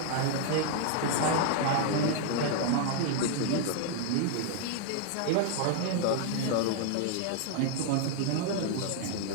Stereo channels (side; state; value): both; different; correlation 0.00